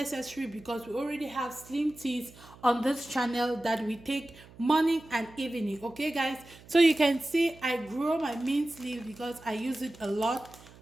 because we already have slim teas on this channel that we take morning and evening. Okay guys, so you can see I grow my mint leaf because I use it a lot.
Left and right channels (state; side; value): noise; right; hum, 22 dB below the sound